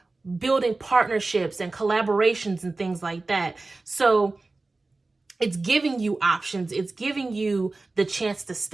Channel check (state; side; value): quieter; left; 3.4 dB